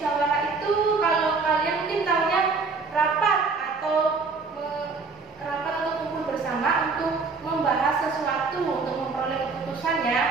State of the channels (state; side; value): quieter; left; 4.3 dB